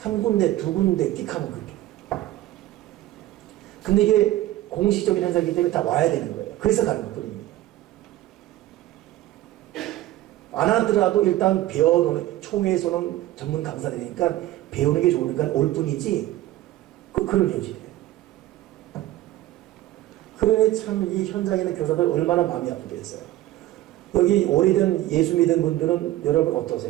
군데, 2군데 띡 하면 그렇게. 근데 이게 공식적인 행사이기 때문에 다 와야 되는 거예요. 그래서 가는 것뿐입니다. 안 하더라도 일단 배워놓는, 총회에서는 전문 강사들이니까 배우는 게 좋으니까 올 뿐이지, 그런 현실이에요. 그러니 참 이 현장에 있는 교사들 얼마나 마음이 아프겠어요. 여기 오래된 예수 믿은 분들은 여러분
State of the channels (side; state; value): left; quieter; 15.2 dB